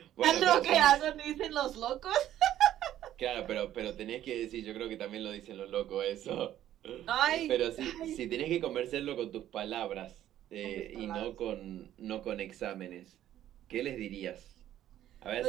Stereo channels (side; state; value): left; quieter; 12.2 dB